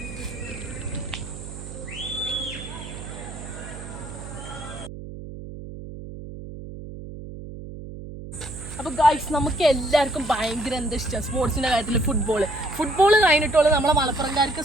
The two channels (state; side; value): noise; right; hum, 11 dB below the sound